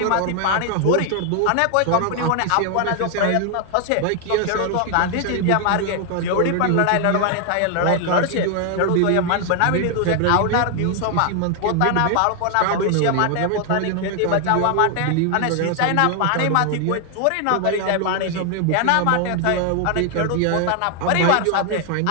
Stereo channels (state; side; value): different; both; correlation 0.00